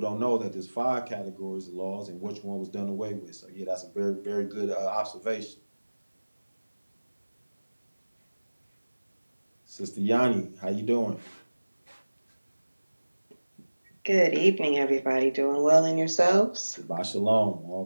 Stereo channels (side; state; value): both; inverted; correlation -1.00